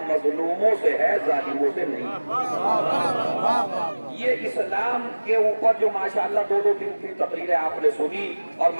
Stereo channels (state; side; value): inverted; both; correlation -1.00